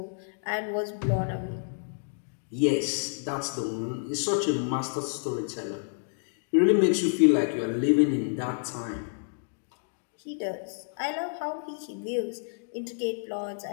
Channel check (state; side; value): silent; right; digital silence